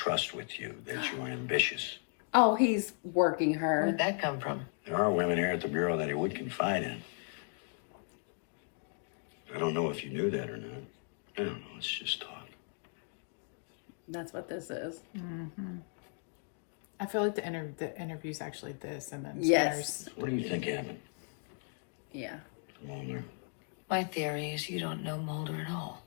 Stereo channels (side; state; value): right; silent; 54 dB below the other